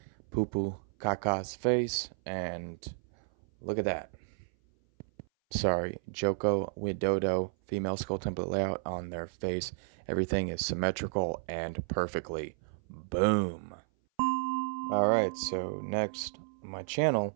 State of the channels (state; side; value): silent; left; 56 dB below the other